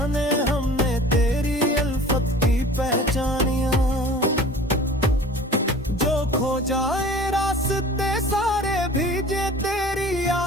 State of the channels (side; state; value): both; normal; correlation 0.44